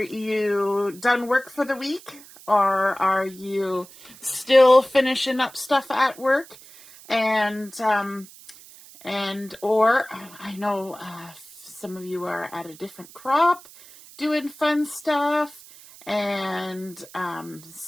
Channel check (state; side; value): noise; right; hiss, 20 dB below the sound